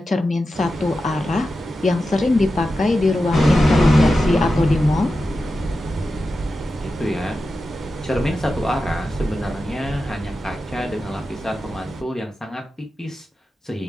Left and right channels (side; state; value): both; normal; correlation 0.91